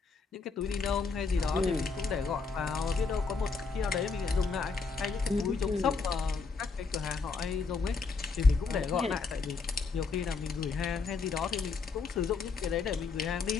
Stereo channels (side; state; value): right; quieter; 4.6 dB